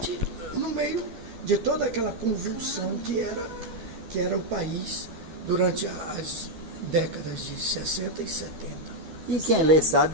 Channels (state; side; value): late; left; 13 ms